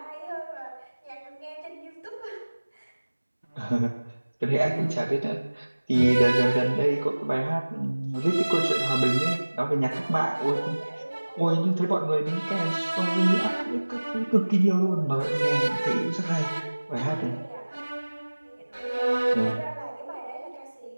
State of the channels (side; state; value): both; inverted; correlation -1.00